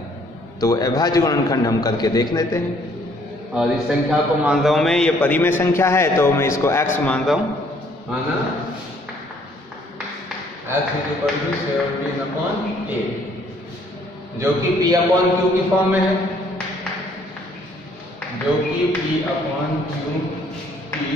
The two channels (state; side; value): normal; both; correlation 0.63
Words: तो अभाज्य गुणनखंड हम करके देख लेते हैं। और इस संख्या को मान रहा हूं मैं, ये परिमेय संख्या है तो मैं इसको x मान रहा हूं, माना x = 17/8, जो कि p/q की फॉर्म में है, जो कि p/q की